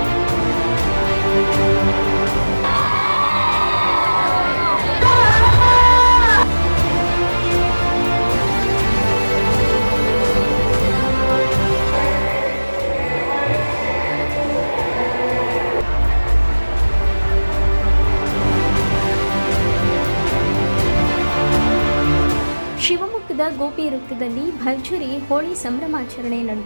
ಶಿವಮೊಗ್ಗದ ಗೋಪಿ ವೃತ್ತದಲ್ಲಿ ಭರ್ಜರಿ ಹೋಳಿ ಸಂಭ್ರಮಾಚರಣೆ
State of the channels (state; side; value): inverted; both; correlation -1.00